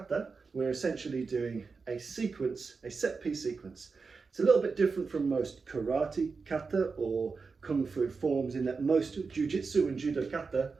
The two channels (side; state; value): left; quieter; 4.7 dB